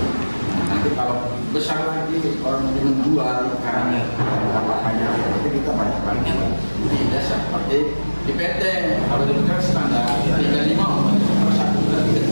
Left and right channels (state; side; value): inverted; both; correlation -1.00